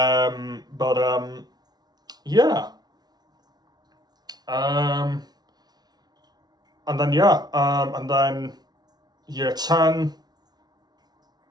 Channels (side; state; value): left; late; 0.19 ms